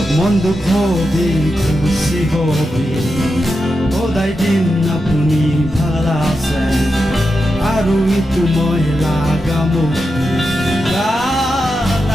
মন দুঃখ হবি খুশি হবি সদায় দিন আপুনি ভাল আছে আৰু ইটো মই লাগা মোক গান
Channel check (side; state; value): both; normal; correlation 0.88